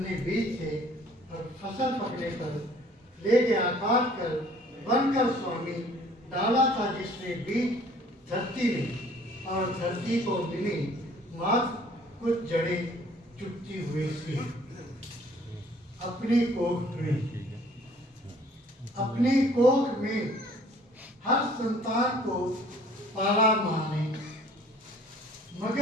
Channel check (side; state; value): both; normal; correlation 0.56